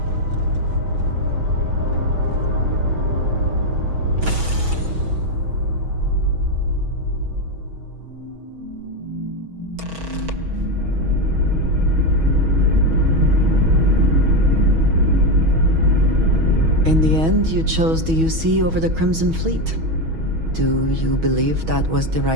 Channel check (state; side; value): late; left; 6.2 ms